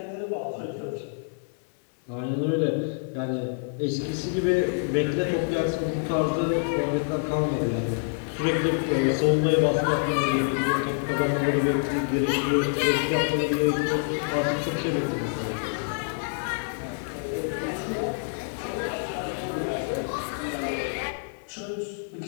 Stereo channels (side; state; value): right; silent; 60 dB below the other